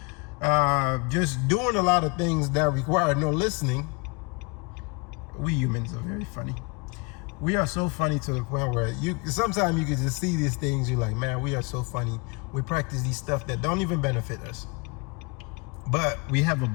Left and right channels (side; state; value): right; quieter; 29.5 dB